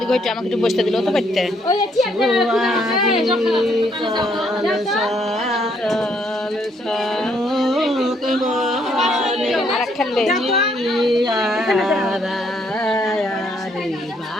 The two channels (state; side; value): normal; both; correlation 0.70